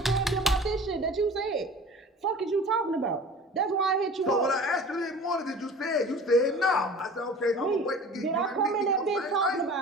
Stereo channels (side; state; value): both; normal; correlation 0.42